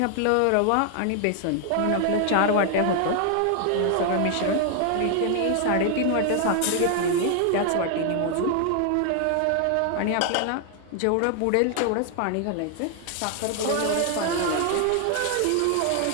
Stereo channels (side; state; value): both; different; correlation 0.00